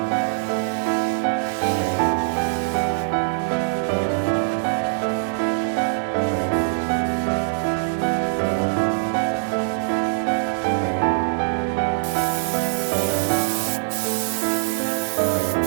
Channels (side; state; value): left; silent; 59 dB below the other